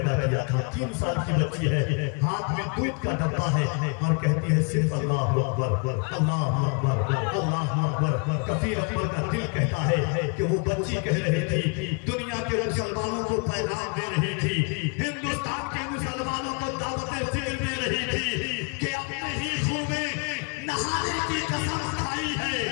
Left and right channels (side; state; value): right; quieter; 36.6 dB